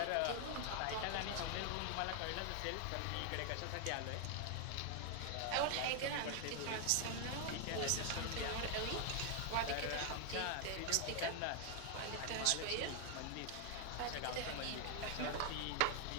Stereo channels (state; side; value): different; both; correlation 0.00